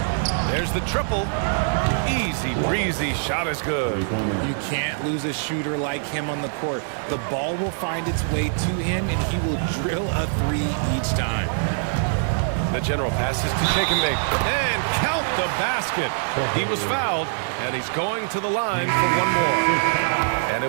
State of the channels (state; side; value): silent; left; digital silence